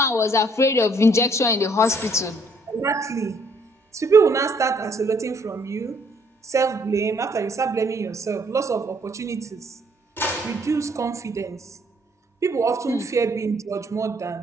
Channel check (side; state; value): both; normal; correlation 0.65